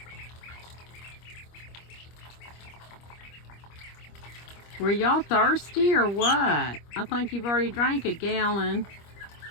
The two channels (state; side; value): late; right; 25 ms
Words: Were y'all thirsty or what? I think you've already drank a gallon.